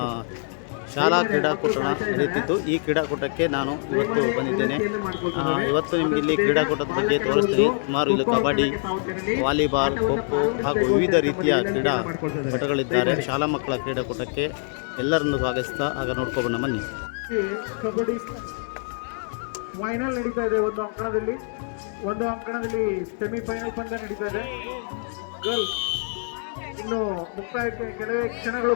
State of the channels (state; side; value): silent; right; 61 dB below the other